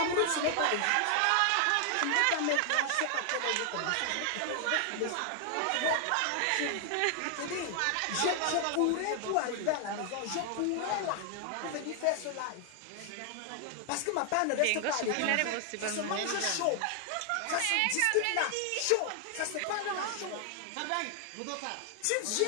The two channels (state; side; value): different; both; correlation 0.00